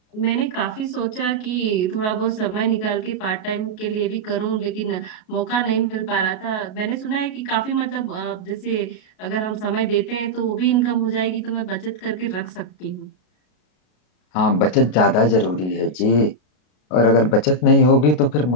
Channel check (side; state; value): right; late; 33 ms